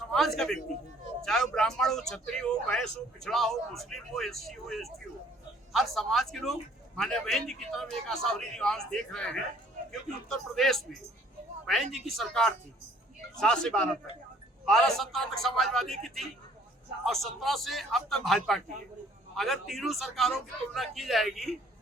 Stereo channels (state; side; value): normal; both; correlation 0.59